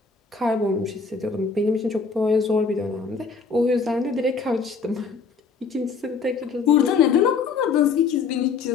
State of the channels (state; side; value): quieter; right; 5.1 dB